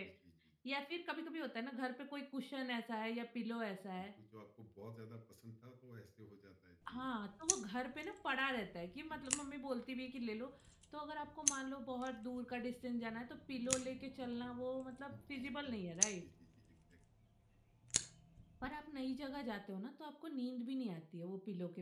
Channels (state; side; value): identical; both; correlation 1.00